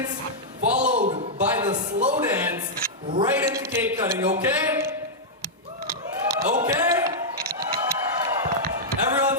followed by the slow dance, right into cake cutting, okay? Okay?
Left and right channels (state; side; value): normal; both; correlation -0.07